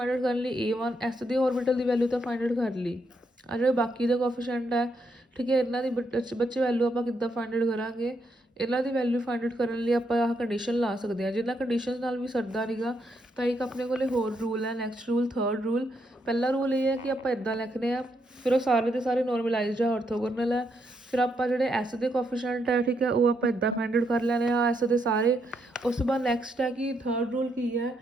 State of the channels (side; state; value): both; normal; correlation 0.78